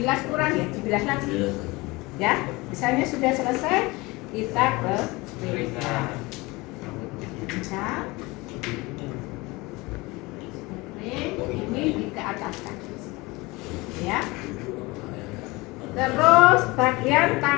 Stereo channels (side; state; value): right; quieter; 23.1 dB